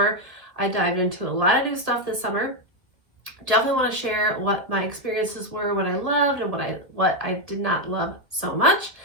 I dived into a lot of new stuff this summer. Definitely want to share what my experiences were, what I loved and what I did not love so much.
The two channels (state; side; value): late; left; 1.9 ms